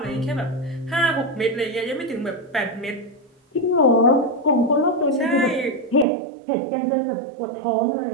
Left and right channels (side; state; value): left; drops out; at 6.1 s